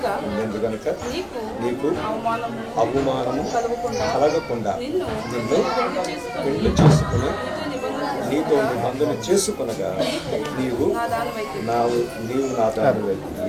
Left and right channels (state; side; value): identical; both; correlation 1.00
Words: ఎందుకనుక నీకు అవమానము కలగకుండా నిన్ను పెళ్లి చేసుకుని నీతో నిబంధన చేసుకునగా నీవు నా దానివై.